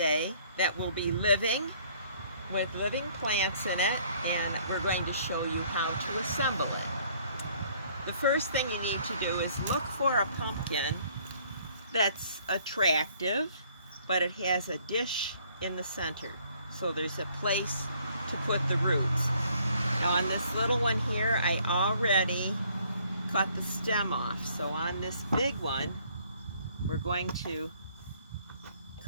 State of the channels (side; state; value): both; inverted; correlation -0.62